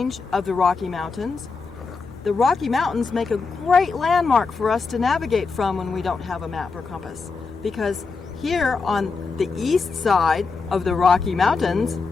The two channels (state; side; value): quieter; right; 4.6 dB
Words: of the Rocky Mountains, the Rocky Mountains make a great landmark for us to navigate from when we don't have a map or compass. Because here on the east side of the Rocky Mountains,